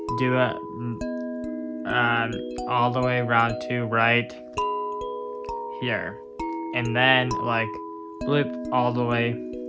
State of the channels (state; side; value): identical; both; correlation 1.00